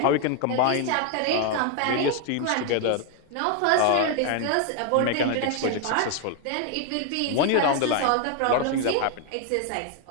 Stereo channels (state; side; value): different; both; correlation 0.01